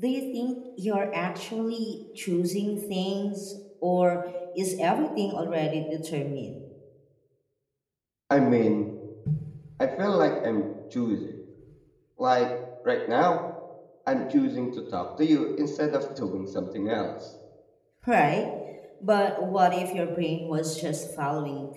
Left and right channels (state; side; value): identical; both; correlation 1.00